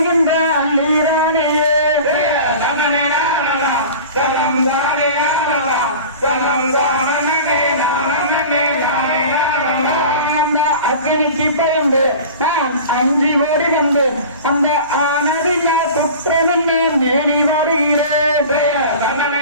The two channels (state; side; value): inverted; both; correlation -0.38